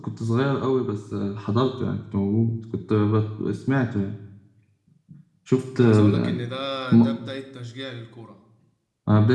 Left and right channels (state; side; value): identical; both; correlation 1.00